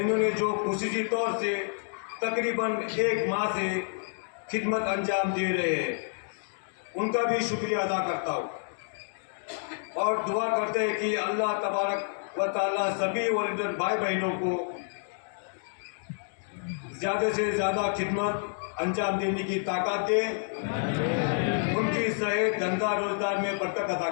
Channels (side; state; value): right; silent; digital silence